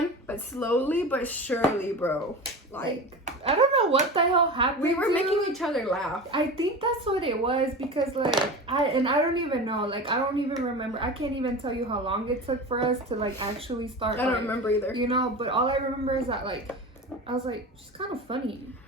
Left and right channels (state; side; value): normal; both; correlation 0.30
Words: but slowly but surely, bro, like I don't know what the hell happened. We were making each other laugh. I think that's what it was, because like I don't even know. Like, I don't even remember. I can't even tell you how long it took for us to like actually start. I don't remember either. You know, but all I remember is that like I was like, she's kind of funny.